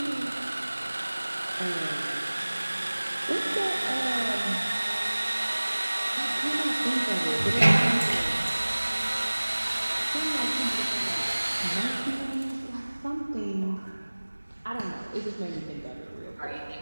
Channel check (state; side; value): inverted; both; correlation -1.00